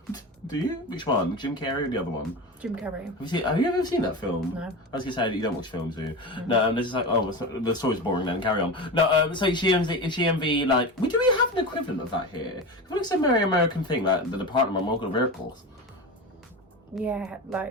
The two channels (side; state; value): both; normal; correlation 0.25